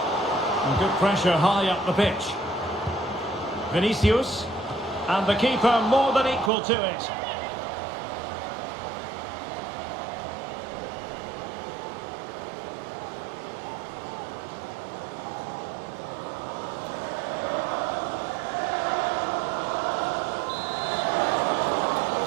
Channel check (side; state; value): left; drops out; at 6.5 s